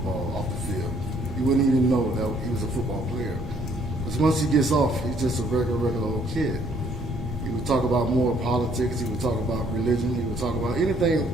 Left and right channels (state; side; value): normal; both; correlation 0.65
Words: off the field. You wouldn't even know that he was a football player. Because once he gets off, he's just a regular old kid. He would talk about more politics. He would talk about religion. He would talk about anything